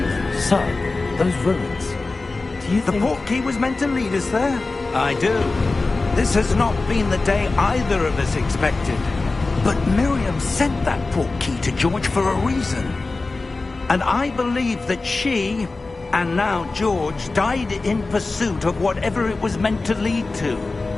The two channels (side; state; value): right; quieter; 3.5 dB